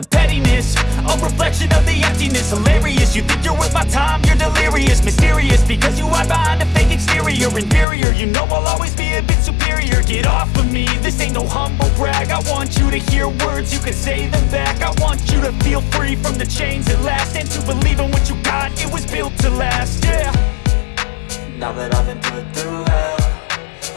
pettiness, a reflection of the emptiness. Hilarious, you think you're worth my time, you're delirious. Mysterious, because you hide behind a fake exterior. Inferior, you know I'll always be a bit superior. Get off of me, this ain't no humble brag. I want you to hear words, you can say them back. I want you to feel free from the chains at last, and to believe in what you got, it was built to last, yeah. Now that I've been put through hell,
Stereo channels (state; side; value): drops out; right; at 7.9 s